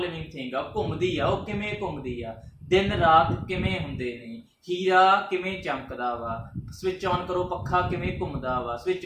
लिविंग थिंग आ, घूमदी आ, ਉਹ ਕਿਵੇਂ ਘੁੰਮਦੀ ਆ, ਦਿਨ ਰਾਤ ਕਿਵੇਂ ਹੁੰਦੇ ਨੇ, ਹੀਰਾ ਕਿਵੇਂ ਚਮਕਦਾ ਵਾ, ਸਵਿਚ ਆਨ ਕਰੋ ਪੱਖਾ ਕਿਵੇਂ ਘੁੰਮਦਾ ਵਾ, ਸਵਿਚ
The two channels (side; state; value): both; identical; correlation 1.00